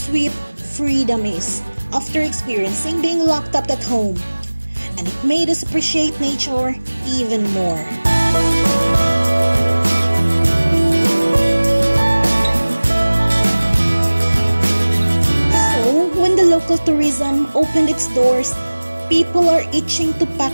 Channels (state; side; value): inverted; both; correlation -1.00